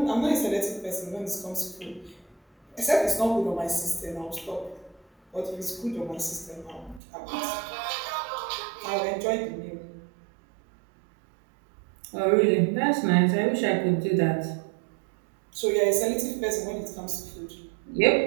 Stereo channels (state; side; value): drops out; left; at 7.0 s